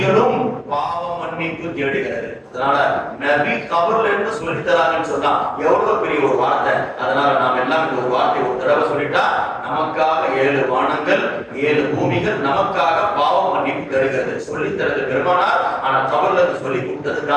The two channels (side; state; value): both; identical; correlation 1.00